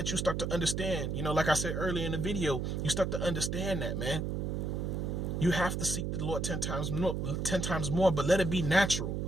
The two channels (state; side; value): noise; right; hum, 1 dB below the sound